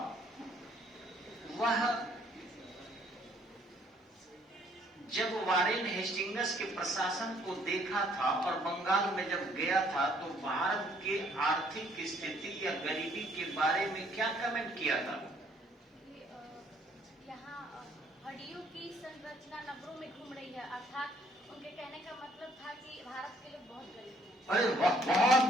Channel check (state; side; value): normal; both; correlation 0.63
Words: वह जब वारेन हेस्टिंग्स के प्रशासन को देखा था और बंगाल में जब गया था तो भारत के आर्थिक स्थिति या गरीबी के बारे में क्या कमेंट किया था? यहाँ हड्डियों की संरचना नब्बरों में घूम रही है, अर्थात उनके कहने का मतलब था कि भारत के लोग बहुत गरीब हैं। अरे बहुत